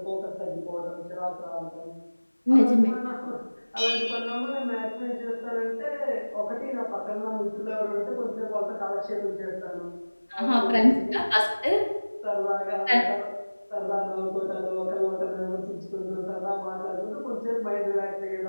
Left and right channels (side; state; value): both; inverted; correlation -1.00